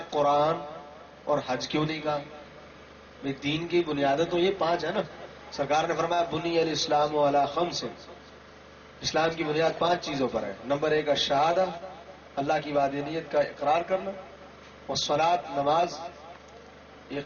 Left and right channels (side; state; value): both; identical; correlation 1.00